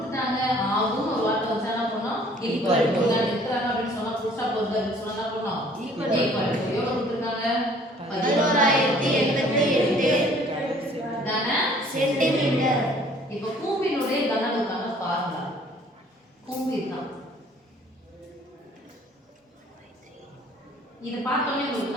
ஆகும் ஒரு வார்த்தை வச்சா என்ன பண்ணோம்? ஈக்குவல் டு நான் எடுக்கறாங்க அப்படி சொன்னா புதுசா போறது அப்படி சொன்னா என்ன பண்ணோம்? ஈக்குவல் டு எவ்வளவு கொடுத்திருக்காங்க? 11,088 கன சென்டிமீட்டர். இப்போ கூம்பினுடைய கன அளவுக்கான ஃபார்முலா கூம்பு தான். இது பார்த்தோன்னே உங்களுக்கு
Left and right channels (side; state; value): both; normal; correlation 0.56